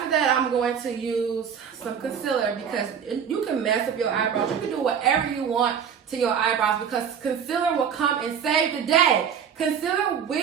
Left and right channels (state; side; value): quieter; left; 7.6 dB